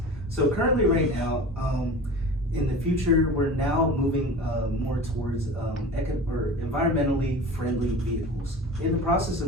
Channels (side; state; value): both; normal; correlation 0.36